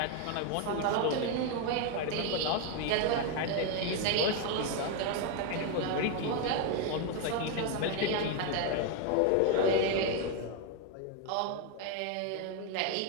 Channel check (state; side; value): different; both; correlation 0.01